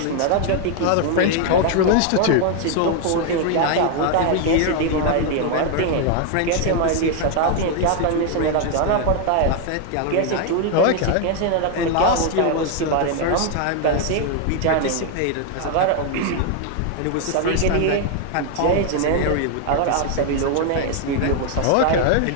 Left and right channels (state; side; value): different; both; correlation 0.00